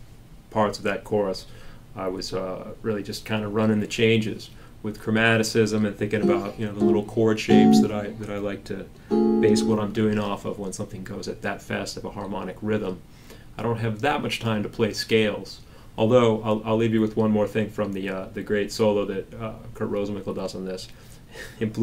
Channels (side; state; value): both; identical; correlation 1.00